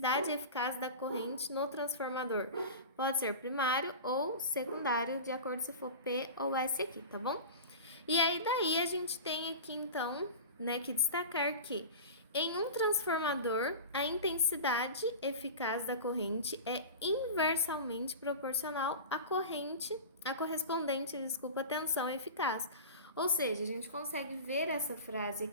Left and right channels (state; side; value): inverted; both; correlation -0.31